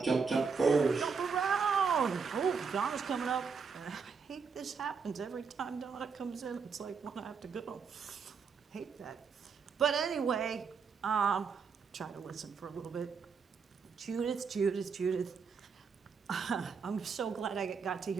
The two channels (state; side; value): quieter; left; 5.6 dB